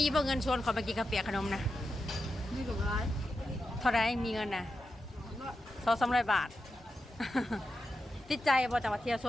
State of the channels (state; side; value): normal; both; correlation 0.89